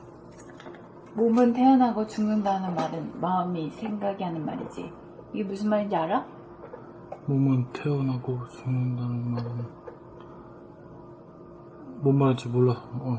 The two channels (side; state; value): both; identical; correlation 1.00